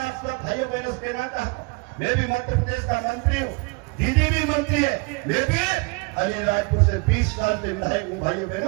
आप सब भाइयों बहनों से कहना चाहता हूँ, मैं भी मध्य प्रदेश का मंत्री हूँ, दीदी भी मंत्री है, मैं भी अलीराजपुर से 20 साल से विधायक हूँ। भाइयों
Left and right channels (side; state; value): left; quieter; 29.8 dB